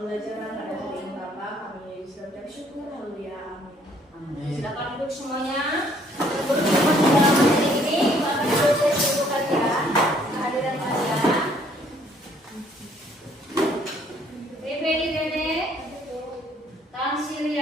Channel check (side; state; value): both; normal; correlation 0.63